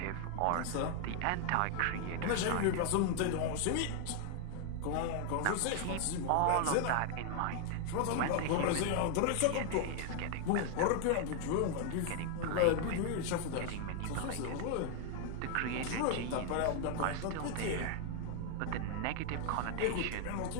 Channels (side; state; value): both; different; correlation 0.00